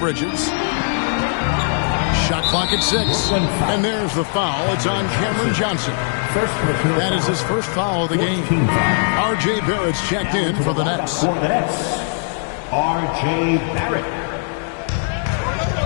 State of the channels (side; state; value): right; silent; digital silence